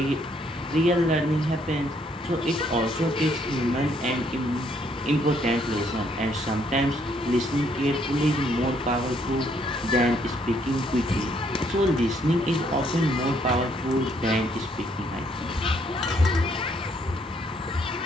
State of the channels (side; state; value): both; normal; correlation 0.69